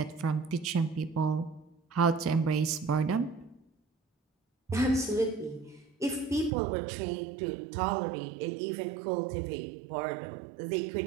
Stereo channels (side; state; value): left; drops out; at 6.5 s